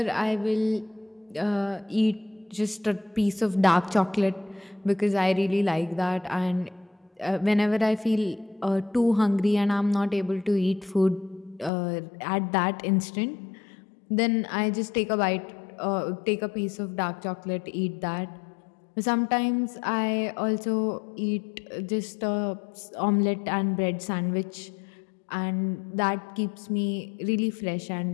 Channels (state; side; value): drops out; right; at 11.7 s